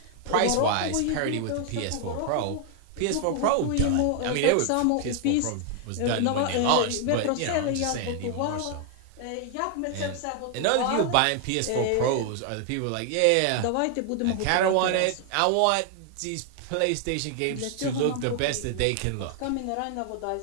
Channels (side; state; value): both; different; correlation 0.00